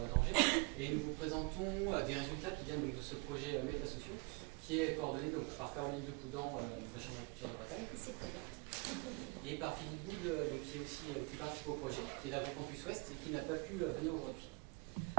d'Angers, et nous vous présentons des résultats qui viennent donc, de ce projet Métasociaux, qui est coordonné donc, par Caroline Depoudan de la Chambre d'agriculture de Bretagne. C'est très bien. Et par Philippe Boud, donc, qui participe au projet, qui est d'AgroCampus Ouest et qui n'a pas pu venir aujourd'hui.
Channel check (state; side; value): quieter; left; 29.3 dB